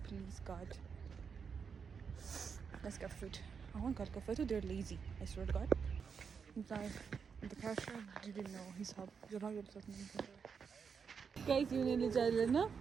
please God. Let's get food. I want to get food. They're lazy, I swear to God. The cashier didn't know his help. You're not going to tell me. Guys, you need to tell me, no?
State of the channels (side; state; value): left; quieter; 6.2 dB